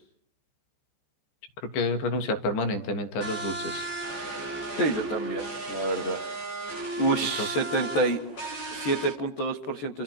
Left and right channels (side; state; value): right; late; 14 ms